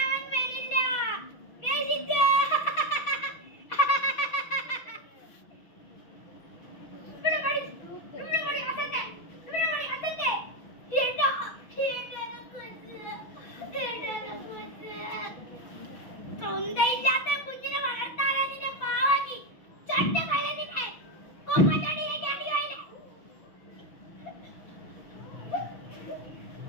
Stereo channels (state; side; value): late; right; 6.1 ms